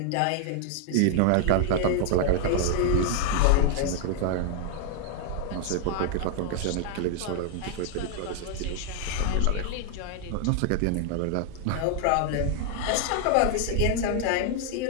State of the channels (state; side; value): different; both; correlation 0.00